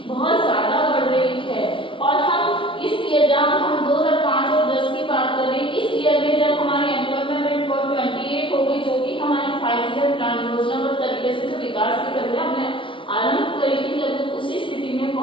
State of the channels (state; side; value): late; right; 0.25 ms